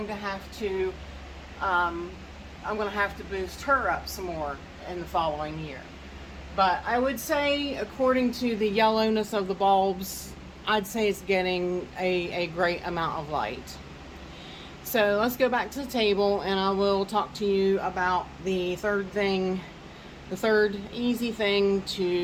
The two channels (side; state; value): both; identical; correlation 1.00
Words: to have to boost her up some more in the following year. But I would say, according to the yellowness of the bulbs, I'd say it's getting a great amount of light. So let's go back to the table, and I will talk to you about the third easy thing